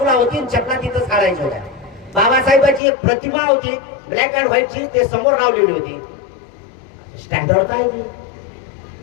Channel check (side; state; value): right; drops out; at 2.8 s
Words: होती. चपला तिथंच काढायच्या होत्या. बाबासाहेबांची एक प्रतिमा होती ब्लॅक अँड व्हाईटची, ते समोर लावलेली होती. स्टँडर्ड काय होती?